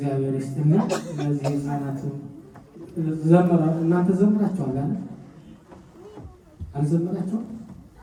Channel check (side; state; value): both; identical; correlation 1.00